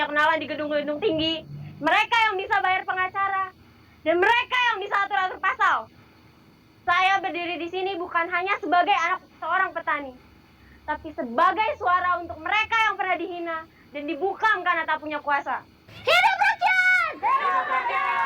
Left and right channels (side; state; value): both; identical; correlation 1.00